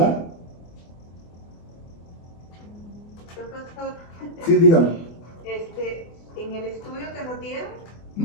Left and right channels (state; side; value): late; right; 24 ms